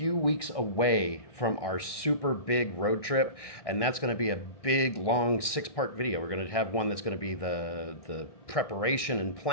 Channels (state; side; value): late; right; 1.6 ms